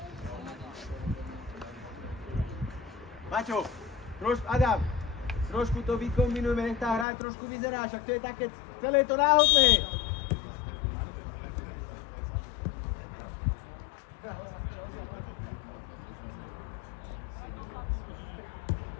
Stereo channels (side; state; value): right; drops out; at 7.1 s